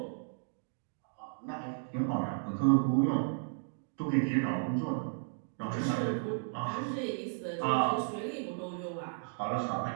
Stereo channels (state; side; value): silent; left; digital silence